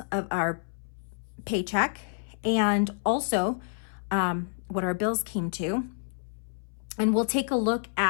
of our paycheck and also what our bills came to. And we'll take a look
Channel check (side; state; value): right; silent; 59 dB below the other